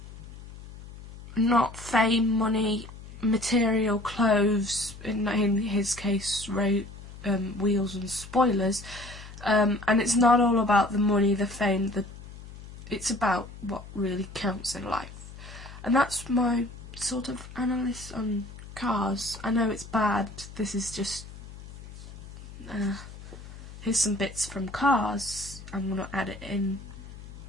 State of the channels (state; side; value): noise; left; hum, 15 dB below the sound